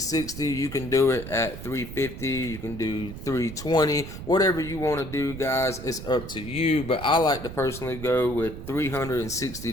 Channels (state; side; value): noise; right; rumble, 10 dB below the sound